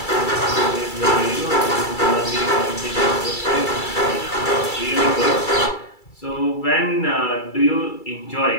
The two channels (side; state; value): right; late; 2.3 ms